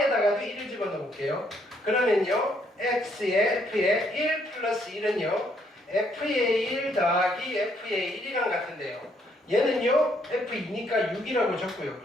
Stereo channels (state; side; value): normal; both; correlation 0.70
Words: 1을 집어넣어 볼게요. 그러면요, X의 F의 1 플러스 1은요, F의 1 더하기 F의 1이랑 같은데요. 얘는요, F2니까 6이라고 적고요.